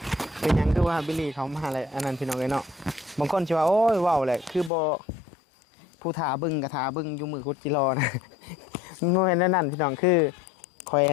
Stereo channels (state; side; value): drops out; right; at 4.7 s